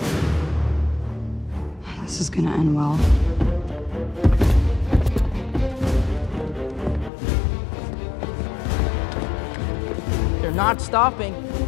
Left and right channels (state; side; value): drops out; right; at 7.1 s